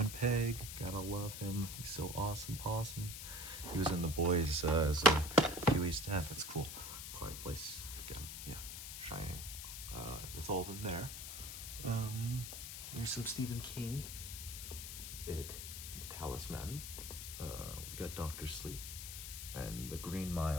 Pegg. Gotta love him. He's so awesome, possum. He was in The Boys as Huey's dad. That's cool. Quiet Place. Again, yeah. Shining. That's all of them there. There's some Stephen King. It. Talisman. We got Doctor Sleep. And The Green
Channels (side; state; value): left; noise; hiss, 7 dB below the sound